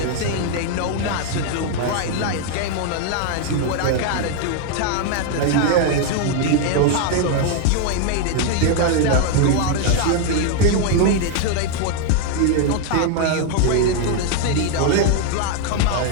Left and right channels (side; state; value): both; different; correlation 0.01